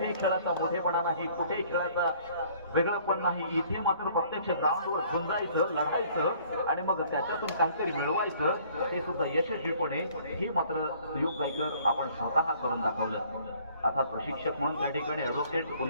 खेळाचा मोठेपणा नाही, कुठेही खेळाचा वेगळंपण नाही. इथे मात्र प्रत्यक्ष ग्राउंडवर झुंजायचं, लढायचं आणि मग त्याच्यातून काहीतरी मिळवायचं, ते सुद्धा यशस्वीपणे. हे मात्र सुयोग गायकर आपण स्वतः करून दाखवलं. अर्थात प्रशिक्षक म्हणून त्या ठिकाणी ॲडव्होकेट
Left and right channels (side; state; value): both; inverted; correlation -0.57